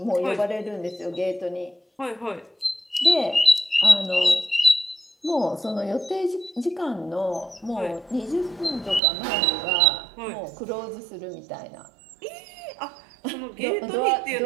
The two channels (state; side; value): drops out; left; at 9.0 s